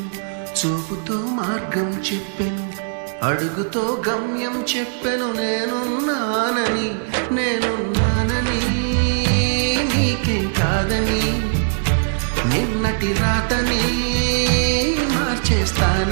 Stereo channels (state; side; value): silent; left; 65 dB below the other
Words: చూపుతో మార్గం చెప్పెను, అడుగుతో గమ్యం చెప్పెను, నేనున్నానని నీకేం కాదని, నిన్నటి రాతని